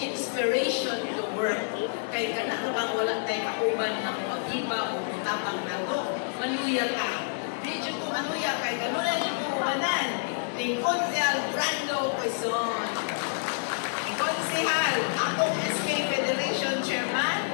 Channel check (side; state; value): right; silent; digital silence